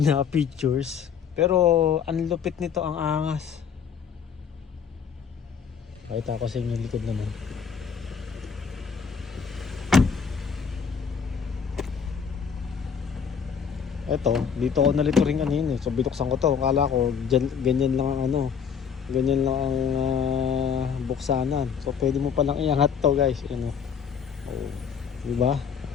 features. Pero ang lupit nito, ang angas. Pakita ko sa inyo yung likod naman. Eto, dito ako nalito rin kanina. So binuksan ko to. Akala ko ganyan lang ang ganyan lang ang buksanan. So pwede mo palang iangat to, guys. Oh, di ba?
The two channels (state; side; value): quieter; right; 6.9 dB